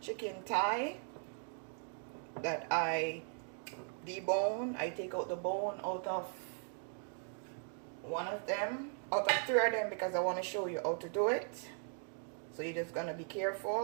thigh that I debone. I take out the bone out of one of them, out of 3 of them, because I want to show you how to do it. So you're just gonna be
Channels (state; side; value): silent; left; 52 dB below the other